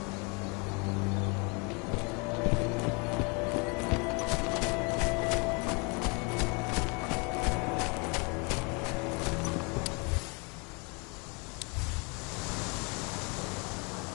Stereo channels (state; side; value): quieter; right; 31.9 dB